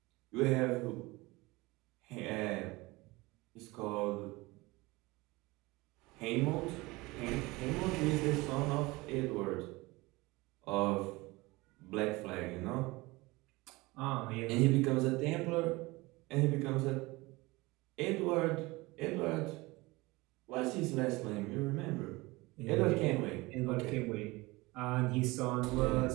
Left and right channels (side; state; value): left; quieter; 22.2 dB